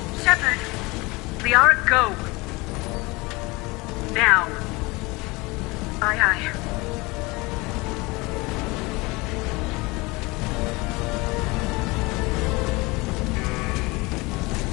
Shepard! Liara, go! Now. Aye, aye.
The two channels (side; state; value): right; quieter; 24.1 dB